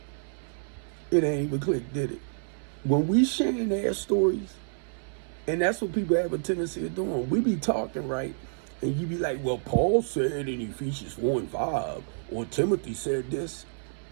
It ain't even click, did it? When we sharing their stories, and that's what people have a tendency of doing. We be talking, right? And you be like, well, Paul said in Ephesians 4:5, or Timothy said this.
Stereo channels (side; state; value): left; silent; 59 dB below the other